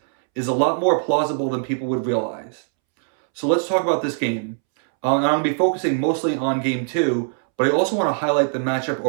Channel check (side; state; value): left; silent; 65 dB below the other